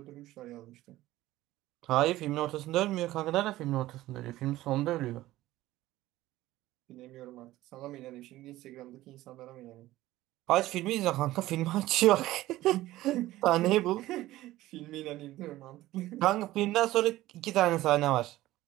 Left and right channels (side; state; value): left; quieter; 16.2 dB